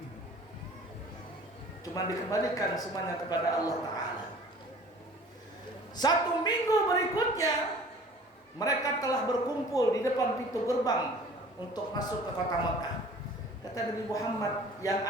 Cuma dikembalikan semuanya kepada Allah Ta'ala. 1 minggu berikutnya mereka telah berkumpul di depan pintu gerbang untuk masuk ke kota Mekah. Kata Nabi Muhammad, yang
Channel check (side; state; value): both; normal; correlation 0.47